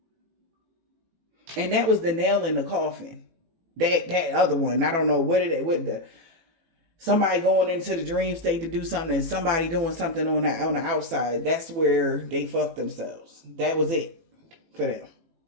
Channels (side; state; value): left; late; 18 ms